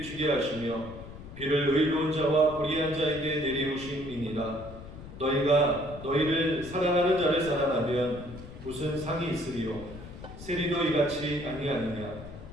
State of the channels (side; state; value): left; noise; rumble, 14 dB below the sound